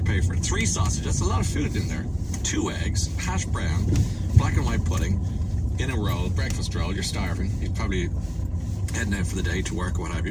pay for it? 3 sausages, that's a lot of food in there. 2 eggs, hash brown, black and white pudding, in a roll, breakfast roll, you're starving. You're probably heading out for the day to work or what have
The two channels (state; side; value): identical; both; correlation 1.00